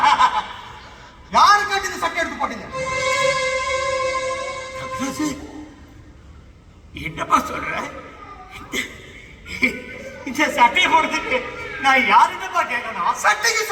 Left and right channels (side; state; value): both; identical; correlation 1.00